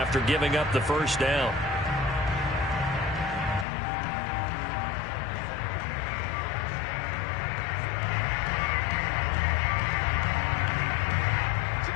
giving up the first down.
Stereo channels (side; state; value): right; drops out; at 3.7 s